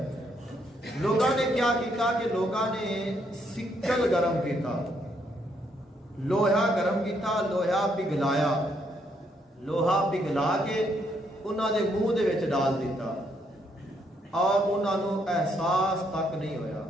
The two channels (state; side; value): normal; both; correlation 0.73